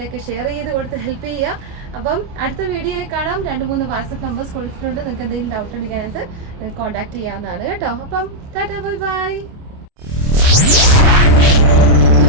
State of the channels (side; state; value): left; late; 28 ms